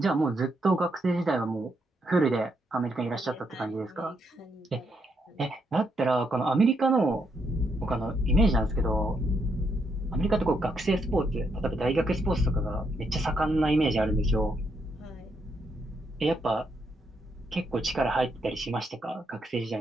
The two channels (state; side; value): normal; both; correlation 0.78